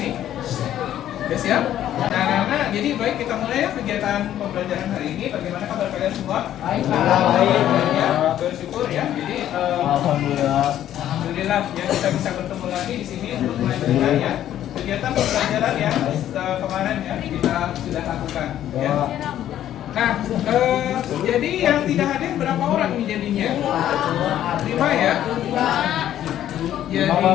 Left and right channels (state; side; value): quieter; right; 11.7 dB